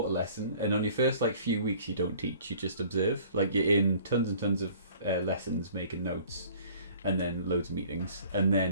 a lesson, and on your first few weeks you don't teach, you just observe. Like you're in tons and tons of lessons, making notes, and then loads of meetings, and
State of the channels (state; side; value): inverted; both; correlation -0.51